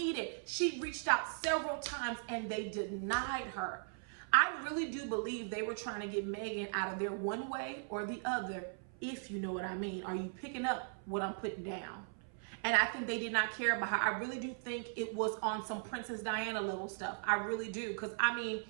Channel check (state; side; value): silent; left; 52 dB below the other